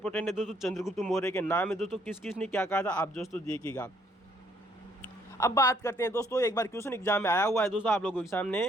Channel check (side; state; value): both; normal; correlation 0.67